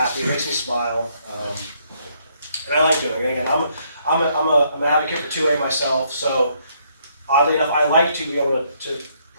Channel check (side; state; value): both; inverted; correlation -0.70